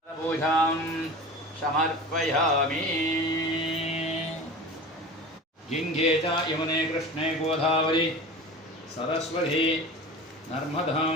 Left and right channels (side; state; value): both; normal; correlation 0.34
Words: समर्पयामि गङ्गे च यमुने कृष्णे गोदावरी सरस्वती